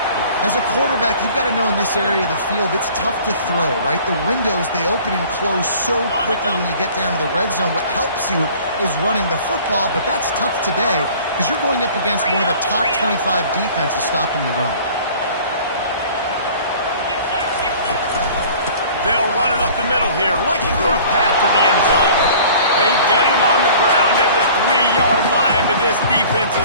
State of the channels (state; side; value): inverted; both; correlation -0.48